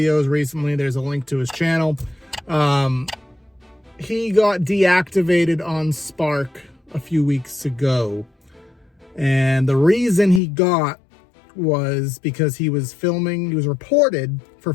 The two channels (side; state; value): right; drops out; at 10.4 s